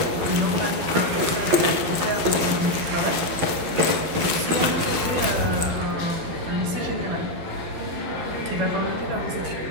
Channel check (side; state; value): left; late; 12 ms